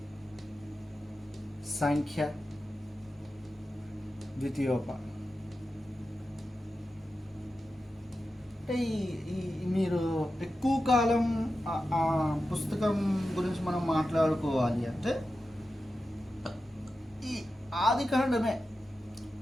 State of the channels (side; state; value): both; normal; correlation 0.92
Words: సంఖ్య, ద్వితీయోప. అంటే మీరు ఎక్కువ కాలం ఆ పుస్తకం గురించి మనం మాట్లాడుకోవాలి అంటే ఈ ఆదికాండమే